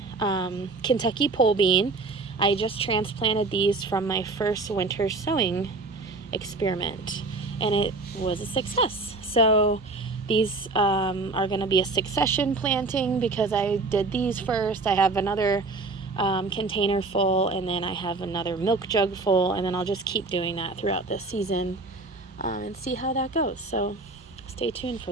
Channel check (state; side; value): quieter; left; 3.5 dB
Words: Kentucky pole bean. I just transplanted these from my first winter sowing experiment, and it was a success. So these are going to be a succession planting because I did these first. I have another container full, and then I have another milk jug full, and then I'll just keep doing that throughout this season and see how that goes. So stay tuned